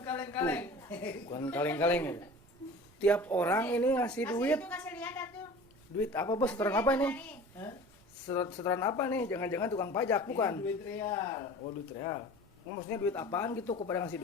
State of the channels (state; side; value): noise; right; rumble, 27 dB below the sound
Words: kaleng-kaleng. Bukan kaleng-kaleng ya. Tiap orang ini ngasih duit. Kasih lihat atuh. Duit apa bos? Setoran apa ini? Hah? Setoran apa nih? Jangan-jangan tukang pajak, bukan? Ini duit real. Oh, duit real. Maksudnya duit apaan gitu kepada ngasih